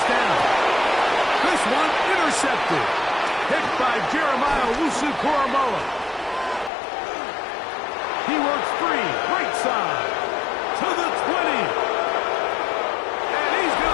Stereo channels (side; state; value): right; drops out; at 6.7 s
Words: down. This one intercepted. Picked by Jeremiah Wusu-Koromoa. He works free, right side, to the 20. And he's